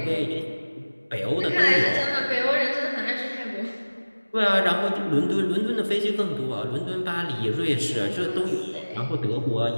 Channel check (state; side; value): inverted; both; correlation -1.00